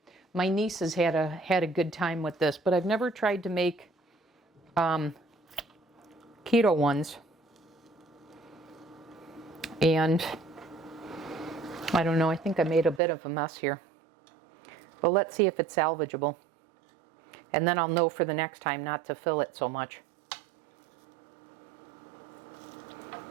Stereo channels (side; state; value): left; drops out; at 13.0 s